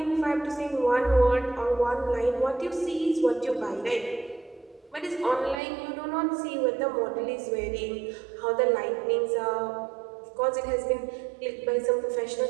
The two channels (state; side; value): drops out; left; at 5.6 s